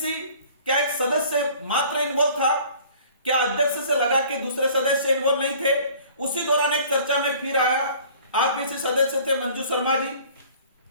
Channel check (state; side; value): inverted; both; correlation -0.51